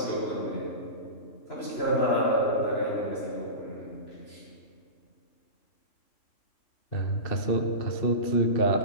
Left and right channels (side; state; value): right; late; 2.7 ms